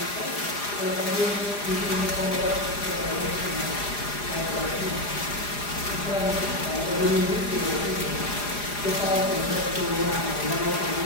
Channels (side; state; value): right; late; 4.9 ms